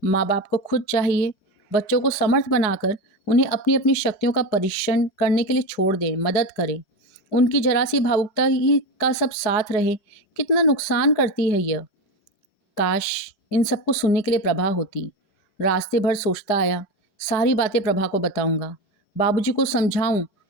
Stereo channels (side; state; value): right; late; 5.1 ms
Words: माँ बाप को खुद चाहिए बच्चों को समर्थ बनाकर उन्हें अपनी अपनी शक्तियों का परीक्षण करने के लिए छोड़ दें, मदद करें। उनकी जरा सी भावुकता ही का सब साथ रहे, कितना नुकसान करती है यह। काश इन सबको सुनने के लिए प्रभा होती। रास्ते भर सोचता आया, सारी बातें प्रभा को बताऊंगा, बाबूजी को समझाऊं